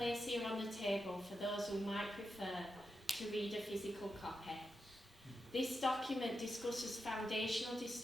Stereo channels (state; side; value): normal; both; correlation 0.88